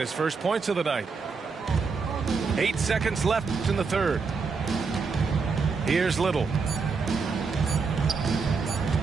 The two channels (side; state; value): left; quieter; 4.9 dB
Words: first points of the night. 8 seconds left in the third. Here's Little.